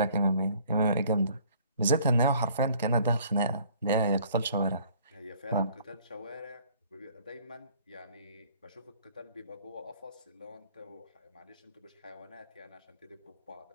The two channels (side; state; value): both; inverted; correlation -0.56